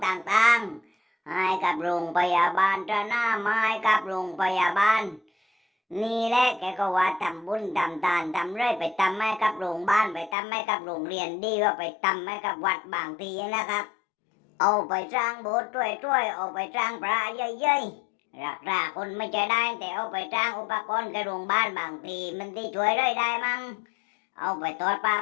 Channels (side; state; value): right; drops out; at 10.4 s